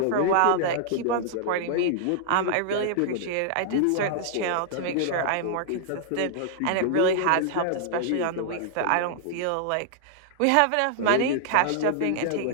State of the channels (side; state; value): both; different; correlation -0.01